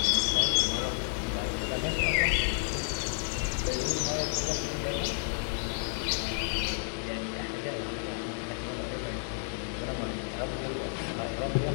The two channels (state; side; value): silent; right; 57 dB below the other